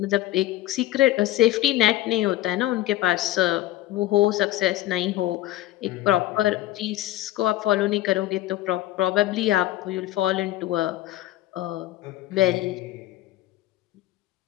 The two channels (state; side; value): quieter; right; 15.3 dB